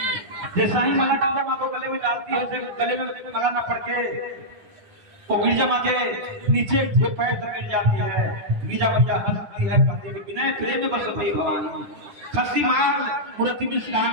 जैसा ही माला गिरजा माँ को गले में डालती है गले में माला ना पड़ के वो गिरजा माँ के नीचे जो पैर तक गिर जाती है। गिरजा मैया हंसती है कहती है बिना प्रेम में बस भई भवानी खसी माल मूर्ति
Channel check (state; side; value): late; left; 9.8 ms